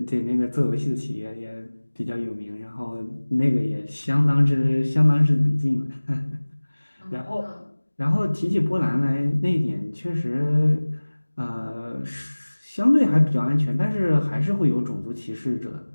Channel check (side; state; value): both; inverted; correlation -1.00